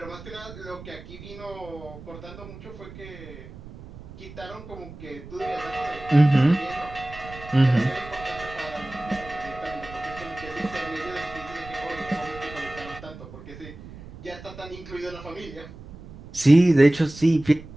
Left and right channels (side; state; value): right; noise; rumble, 15 dB below the sound